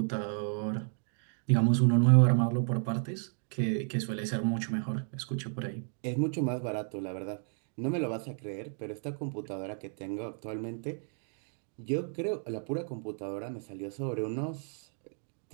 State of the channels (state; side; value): silent; left; 56 dB below the other